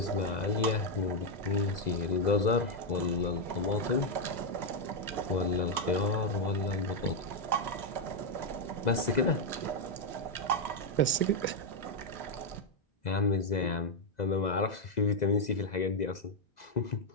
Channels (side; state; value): right; late; 2.0 ms